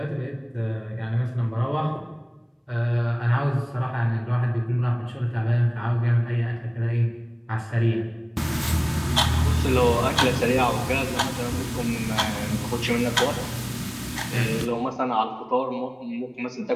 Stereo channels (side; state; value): both; identical; correlation 1.00